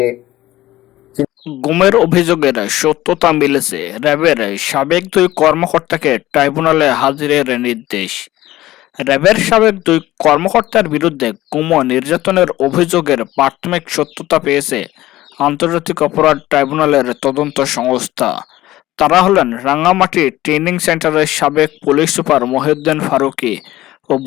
গুমের অভিযোগের সত্যতা মিলেছে। র্যাবের সাবেক 2 কর্মকর্তাকে ট্রাইব্যুনালে হাজিরের নির্দেশ। র্যাবের সাবেক 2 কর্মকর্তার বিরুদ্ধে গুম ও নির্যাতনের অভিযোগের প্রাথমিক সত্যতা পেয়েছে আন্তর্জাতিক অপরাধ ট্রাইব্যুনালের তদন্ত সংস্থা। তারা হলেন রাঙ্গামাটি ট্রেনিং সেন্টারের সাবেক পুলিশ সুপার মহিউদ্দিন ফারুকী ও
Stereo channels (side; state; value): right; quieter; 15.9 dB